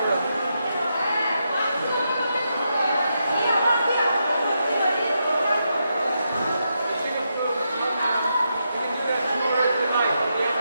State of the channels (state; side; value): inverted; both; correlation -0.83